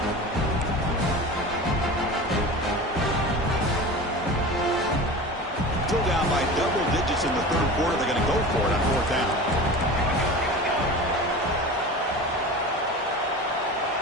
Still down by double digits in the third quarter. They're going to go for it on fourth down.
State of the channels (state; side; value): normal; both; correlation 0.33